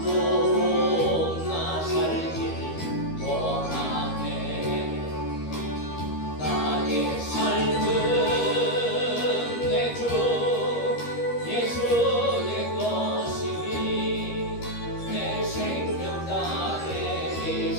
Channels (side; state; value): right; late; 13 ms